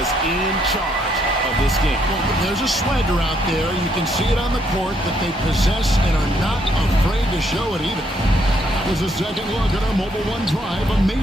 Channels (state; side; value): normal; both; correlation 0.72